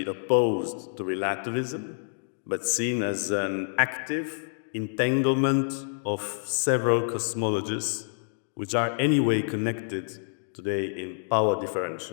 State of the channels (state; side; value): silent; right; digital silence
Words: opposed to relativism, but seen as an active entanglement of several cosmologies, which are anyway connected today in power